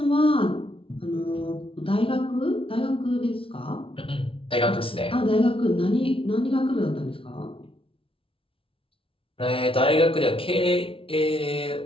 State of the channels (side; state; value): right; late; 0.26 ms